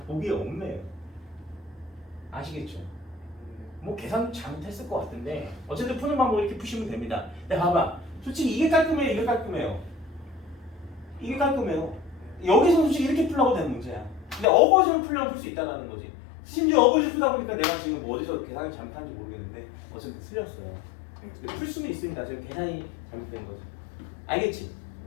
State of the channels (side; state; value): right; drops out; at 14.5 s